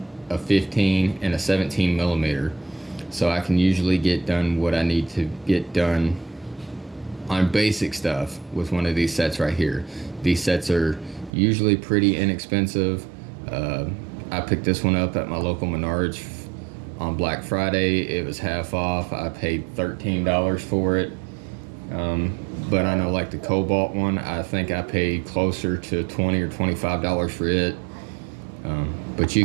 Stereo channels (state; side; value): drops out; left; at 11.3 s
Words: a 15, and a 17 millimeter. So I can usually get done what I need to get done on basic stuff with one of these sets right here. These sets are usually pretty inexpensive. I picked this one up at my local Menards on Black Friday. It was half off. I paid $13 for it. But I know like the Cobalt one, I think I paid closer to $20 or $25 for it. But you